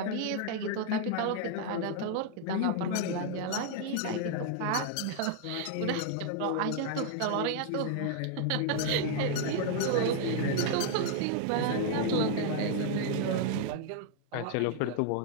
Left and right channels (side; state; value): both; different; correlation 0.00